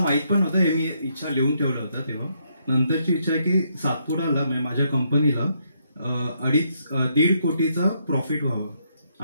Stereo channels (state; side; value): inverted; both; correlation -0.75